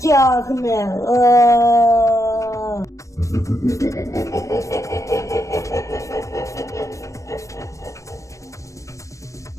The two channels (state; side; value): late; right; 0.15 ms